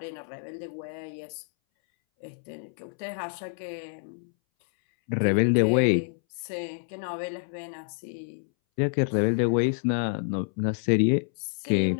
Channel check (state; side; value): silent; right; 59 dB below the other